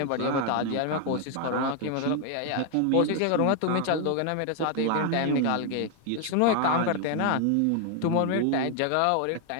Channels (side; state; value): both; different; correlation 0.00